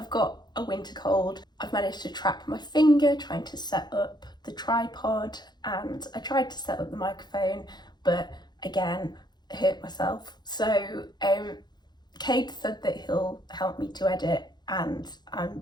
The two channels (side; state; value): right; late; 0.21 ms